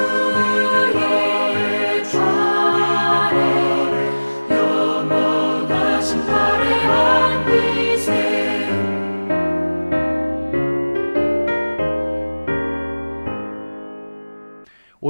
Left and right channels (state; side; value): inverted; both; correlation -1.00